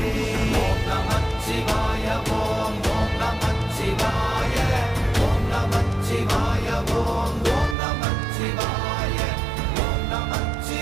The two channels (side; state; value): left; drops out; at 7.8 s